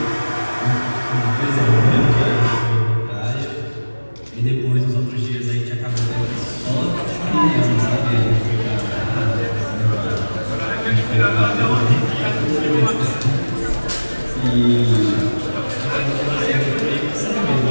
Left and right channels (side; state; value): both; inverted; correlation -1.00